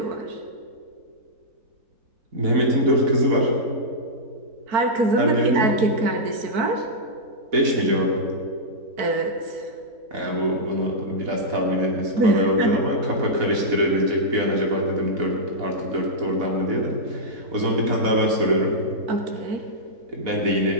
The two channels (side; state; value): left; late; 4.1 ms